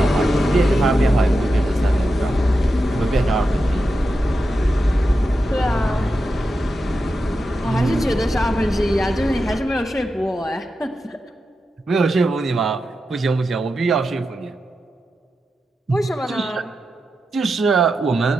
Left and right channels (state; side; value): normal; both; correlation 0.89